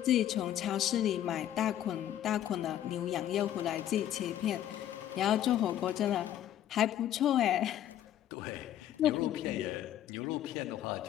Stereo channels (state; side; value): quieter; right; 11.5 dB